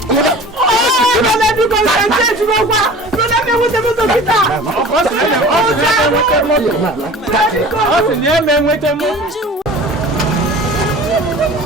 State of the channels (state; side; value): normal; both; correlation 0.41